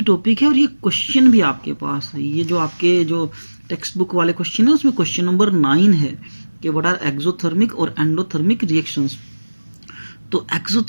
टॉपिक है और ये क्वेश्चन भी आपके पास है। ये जो आपके जो टेक्स्ट बुक वाले क्वेश्चन है उसमें क्वेश्चन नंबर 9 है कि व्हाट आर एक्सोथर्मिक और एंडोथर्मिक रिएक्शंस। तो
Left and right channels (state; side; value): inverted; both; correlation -1.00